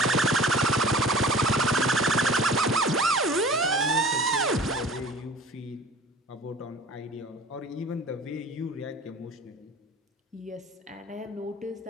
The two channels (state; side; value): normal; both; correlation 0.43